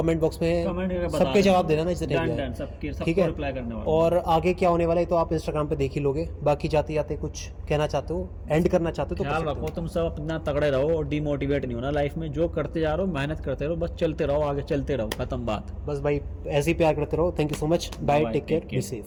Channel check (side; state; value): both; identical; correlation 1.00